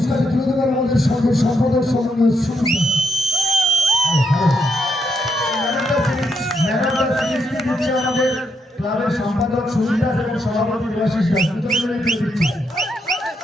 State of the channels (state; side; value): normal; both; correlation 0.79